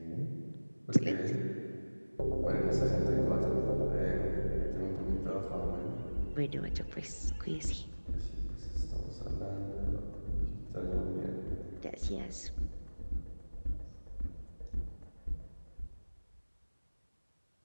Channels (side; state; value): both; inverted; correlation -1.00